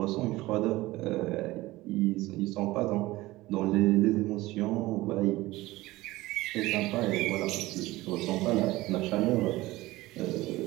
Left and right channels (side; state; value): left; quieter; 18.7 dB